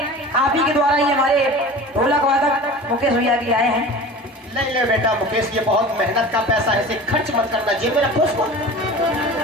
आप ही के द्वारा ही हमारे ढोलक वादक मुकेश भैया के आए हैं। नहीं ले बेटा मुकेश, ये बहुत मेहनत का पैसा है, इसे खर्च मत करना, जेब में रखो उसको।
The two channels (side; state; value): both; normal; correlation 0.37